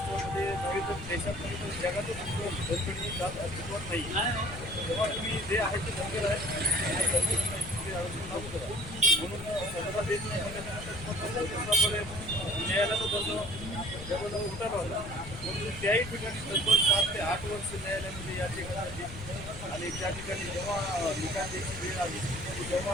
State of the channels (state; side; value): noise; left; rumble, 11 dB below the sound